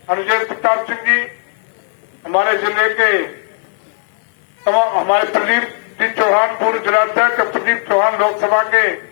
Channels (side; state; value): right; silent; 57 dB below the other